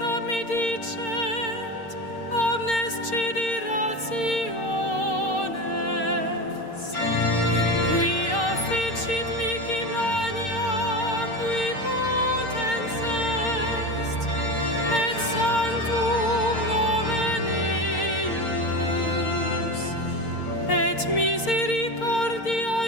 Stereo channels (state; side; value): late; right; 6.6 ms